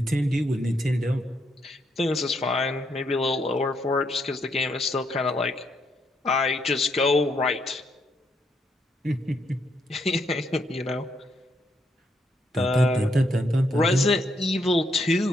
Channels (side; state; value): both; normal; correlation 0.76